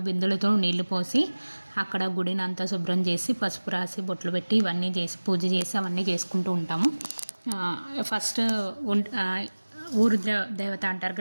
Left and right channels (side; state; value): both; inverted; correlation -1.00